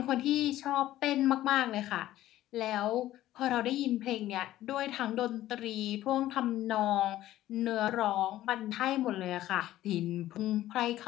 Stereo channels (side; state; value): right; quieter; 14.3 dB